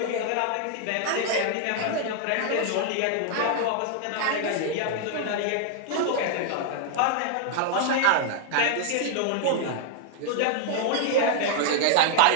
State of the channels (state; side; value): different; both; correlation 0.00